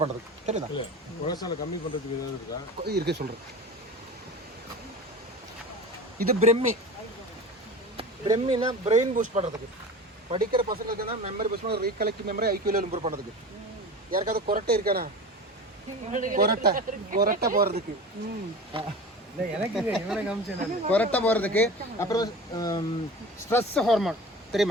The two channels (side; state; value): both; normal; correlation 0.33